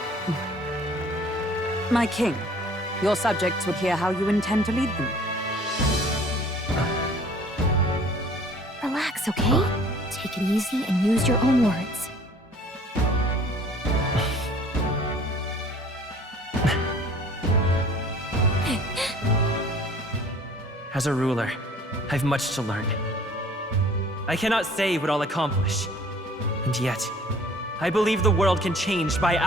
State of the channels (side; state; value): both; normal; correlation 0.52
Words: My king, your subjects would hear how you intend to lead them. Relax, okay? Take it easy and use your own words. As a ruler, I've much to learn. I cannot say what I'll accomplish. And yet, I believe the world can change by